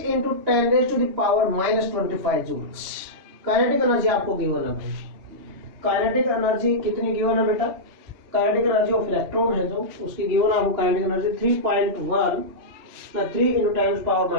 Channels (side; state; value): left; late; 3.0 ms